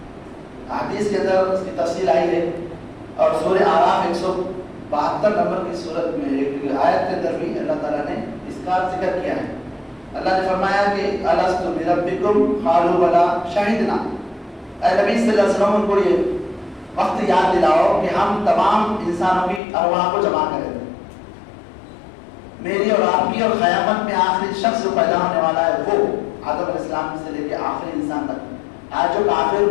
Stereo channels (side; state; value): right; drops out; at 19.6 s